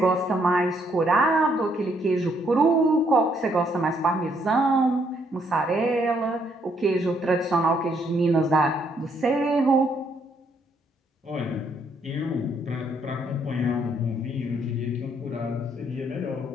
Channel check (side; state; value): both; normal; correlation 0.71